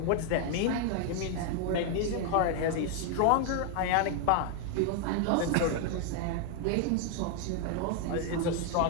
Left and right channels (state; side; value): different; both; correlation 0.00